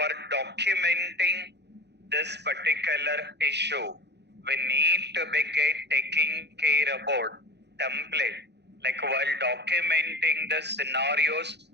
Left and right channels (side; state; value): left; late; 0.50 ms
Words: documenting this particular issue, we need to be taking care about template. Like while documenting the scenarios,